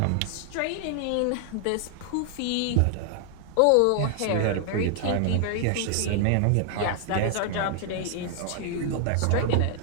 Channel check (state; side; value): different; both; correlation 0.00